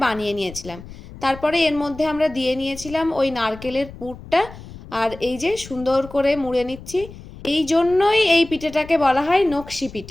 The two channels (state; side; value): noise; left; rumble, 16 dB below the sound